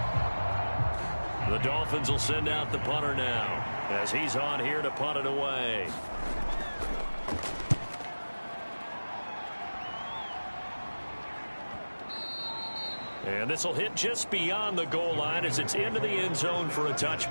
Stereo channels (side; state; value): both; inverted; correlation -1.00